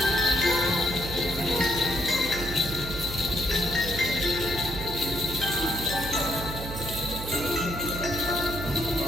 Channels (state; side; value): noise; right; hum, 8 dB below the sound